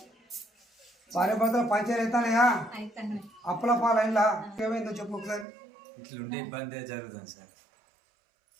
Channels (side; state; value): left; drops out; at 5.5 s